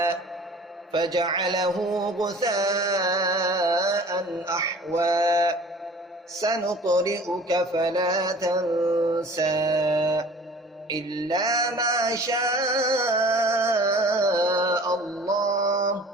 فجعله غثاء أحوى سنقرئك فلا تنسى إلا ما شاء الله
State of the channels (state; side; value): normal; both; correlation 0.46